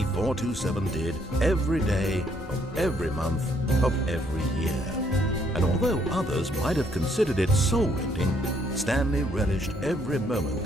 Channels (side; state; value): both; normal; correlation 0.69